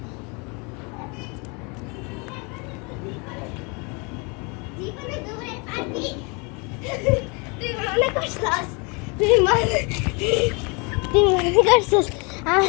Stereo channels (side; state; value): right; quieter; 31.3 dB